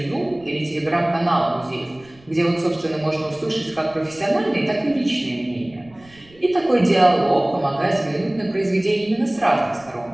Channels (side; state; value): right; noise; rumble, 27 dB below the sound